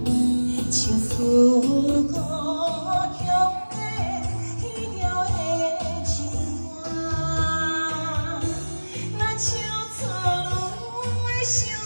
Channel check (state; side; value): inverted; both; correlation -1.00